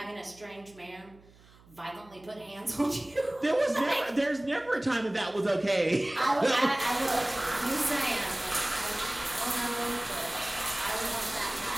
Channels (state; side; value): noise; right; hum, 26 dB below the sound